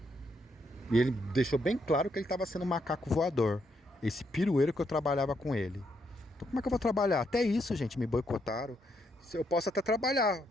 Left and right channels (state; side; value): normal; both; correlation 0.76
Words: E ele deixou bem claro que ele estava sendo um macaco voador. Esse pirueiro que eu trabalhava com ele. Então como é que eu vou trabalhar? Até isso, gente, me boicotaram. Eu posso até trabalhar.